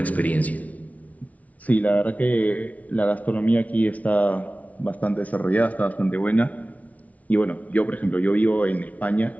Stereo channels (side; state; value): right; late; 0.070 ms